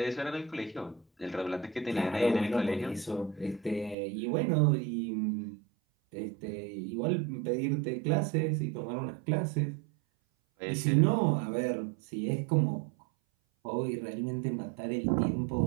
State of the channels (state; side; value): drops out; left; at 4.0 s